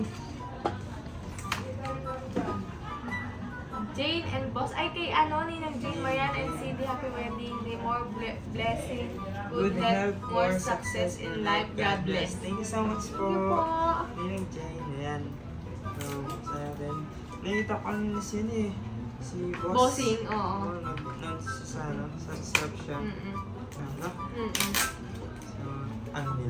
Jane and Boss. Ay, kay ano, Ninang Jane, Marian and Cindy. Happy wedding day. More blessing. Good health, more success in life. God bless. Thank you so much Thank you po. po. Ninang Jane, ayan. So, sa atin. Nakita ko kanina siya eh. Si Boss. Bossing, oo. Sa reception. Mm-mm. Ano? Mm-mm. So, ang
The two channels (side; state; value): both; identical; correlation 1.00